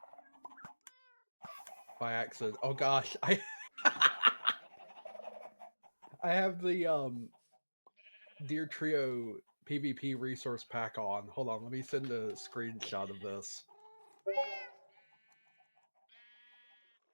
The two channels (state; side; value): inverted; both; correlation -1.00